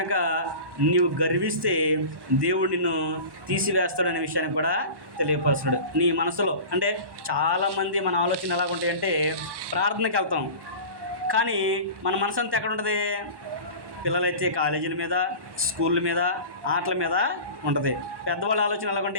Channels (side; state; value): left; late; 1.1 ms